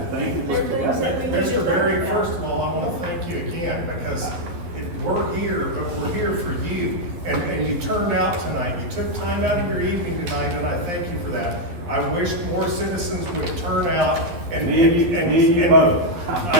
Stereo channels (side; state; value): left; late; 11 ms